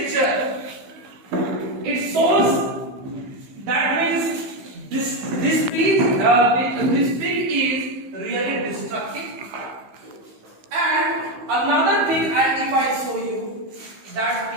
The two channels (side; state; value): left; late; 15 ms